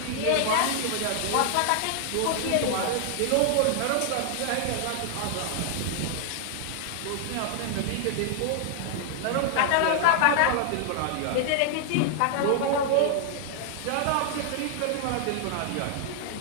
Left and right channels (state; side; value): different; both; correlation 0.00